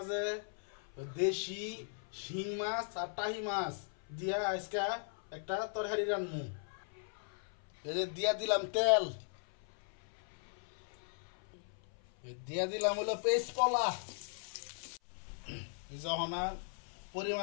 দেশি শিং মাছ আর টাহি মাছ দিয়া আজকে একটা তরকারি রান্নু। এই যে দিয়া দিলাম তেল, দিয়া দিলাম হলো পেস্ট কলা, যখন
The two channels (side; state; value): right; silent; 52 dB below the other